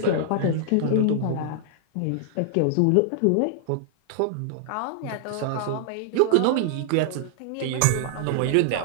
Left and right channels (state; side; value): different; both; correlation -0.01